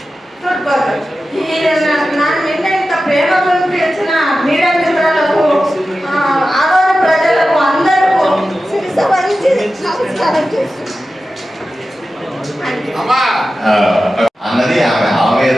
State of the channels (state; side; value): normal; both; correlation 0.93